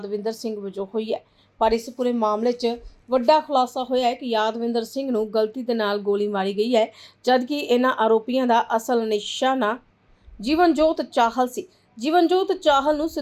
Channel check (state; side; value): identical; both; correlation 1.00